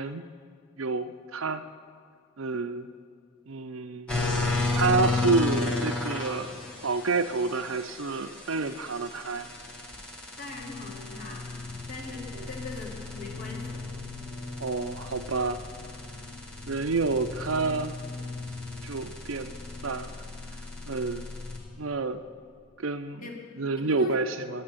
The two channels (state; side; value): normal; both; correlation 0.09